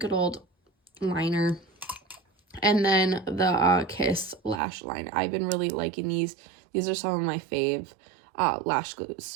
old liner. And then the Kiss Lash Liner. I've been really liking these. These are some of my fave lash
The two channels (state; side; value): drops out; left; at 4.6 s